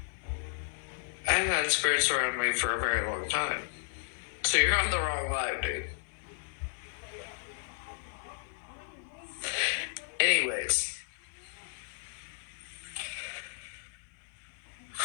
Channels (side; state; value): right; silent; 55 dB below the other